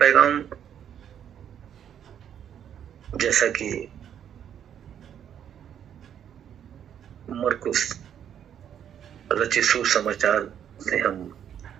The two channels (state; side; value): quieter; left; 9.3 dB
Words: जैसा कि मरकुस रचित सुसमाचार से हम